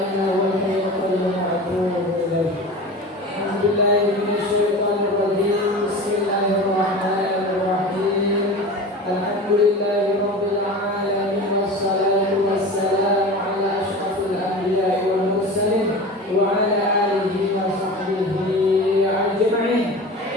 illa huwal hayyul qayyum wa atubu ilaih. Alhamdulillahi minasyaitonir rajim. Bismillahirrahmanirrahim. Alhamdulillahi rabbil alamin wassalatu wassalamu ala asyrafil anbiya'i wal mursalin wa ala alihi wa sahbihi ajma'in.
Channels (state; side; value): normal; both; correlation 0.33